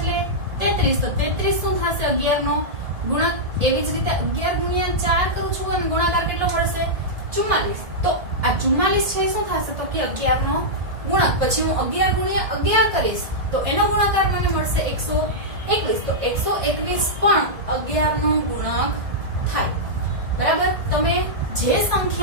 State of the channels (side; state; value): left; late; 1.7 ms